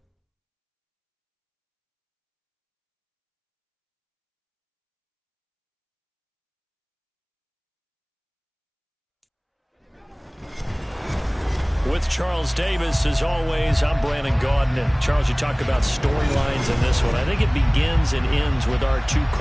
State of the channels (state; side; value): identical; both; correlation 1.00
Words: With Charles Davis, as always, I'm Brandon Gaudin. Charles, you talk about storylines in this one. I think it begins and ends with our two